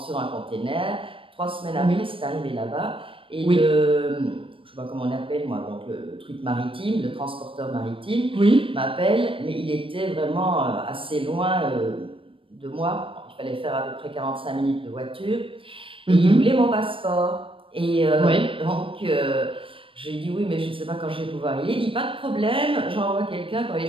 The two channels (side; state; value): left; late; 0.25 ms